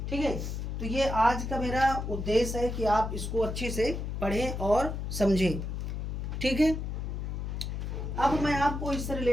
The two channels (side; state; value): left; noise; hum, 4 dB below the sound